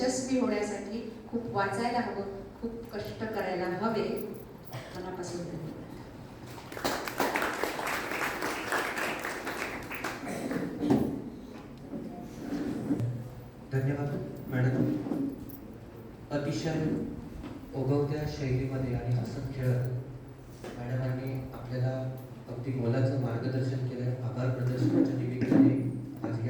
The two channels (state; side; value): identical; both; correlation 1.00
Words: होण्यासाठी खूप वाचायला हवं, खूप कष्ट करायला हवे. मनापासून धन्यवाद. धन्यवाद मॅडम. अतिशय ओघवत्या शैलीमध्ये आणि हसत खेळत मॅडमांनी आपल्याला अगदी मोलाचं मार्गदर्शन केलं. आभार प्रदर्शनाच्या निमित्ताने आज